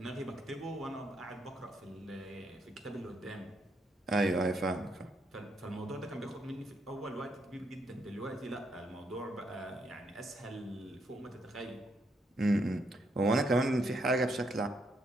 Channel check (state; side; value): normal; both; correlation 0.76